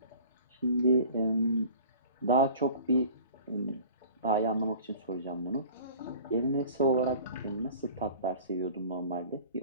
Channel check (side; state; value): both; inverted; correlation -0.45